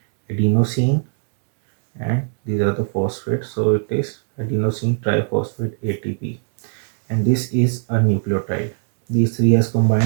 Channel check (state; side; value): silent; left; 66 dB below the other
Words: adenosine, and these are the phosphates. So it is adenosine triphosphate ATP, and this is a nucleotide. These three has